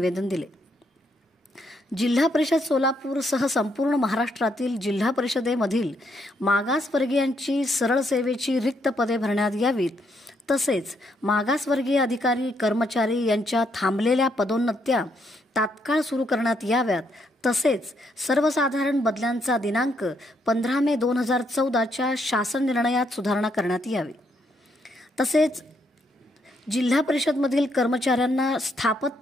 दिले। जिल्हा परिषद सोलापूरसह संपूर्ण महाराष्ट्रातील जिल्हा परिषदेमधील मागासवर्गीयांची सरळ सेवेची रिक्त पदे भरण्यात यावीत, तसेच मागासवर्गीय अधिकारी कर्मचारी यांच्या थांबलेल्या पदोन्नत्या तात्काळ सुरू करण्यात याव्यात, तसेच सर्वसाधारण बदल्यांचा दिनांक 15 मे 2014च्या शासन निर्णयात सुधारणा करण्यात यावी। तसेच जिल्हा परिषदमधील कर्मचाऱ्यांना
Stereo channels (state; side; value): normal; both; correlation 0.75